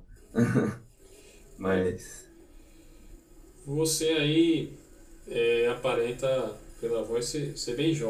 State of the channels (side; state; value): both; identical; correlation 1.00